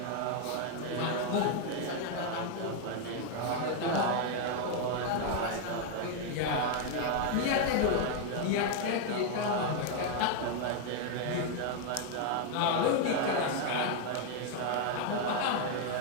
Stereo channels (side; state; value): both; different; correlation 0.00